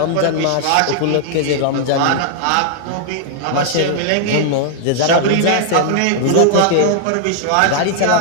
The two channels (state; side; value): different; both; correlation -0.01